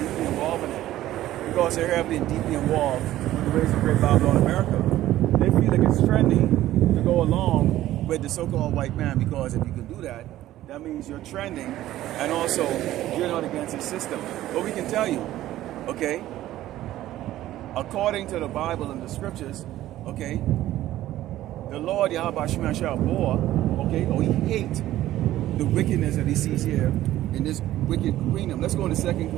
deeply involved in it. Because they're heavily and deeply involved with the ways of Great Babylon America. They feel like it's trendy to go along with the so-called white man, because if you can do that, that means you're trending, and also you're not against the system. But we can tell you, okay, according to the Bible and the scriptures, okay, the Lord Yahweh Shema bore, okay, or he hates the wickedness that he sees here in this wicked kingdom. Let's go to 2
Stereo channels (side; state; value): left; quieter; 14.3 dB